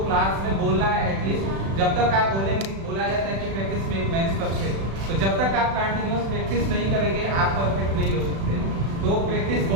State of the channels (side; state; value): left; late; 36 ms